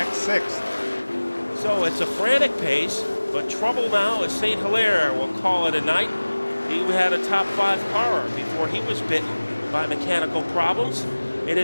6th. So it's a frantic pace, but trouble now as St. Hilaire will call it a night. He had a top 5 car before he was bitten by mechanical problems. It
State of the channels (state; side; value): inverted; both; correlation -1.00